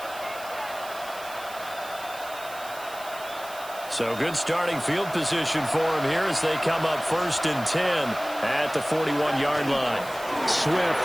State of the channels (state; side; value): noise; right; hiss, 16 dB below the sound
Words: So good starting field position for him here as they come up 1st and 10 at the 41-yard line. Swift